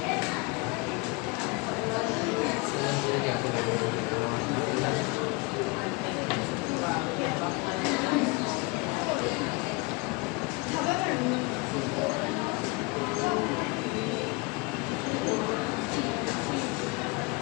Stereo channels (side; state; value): right; quieter; 27.8 dB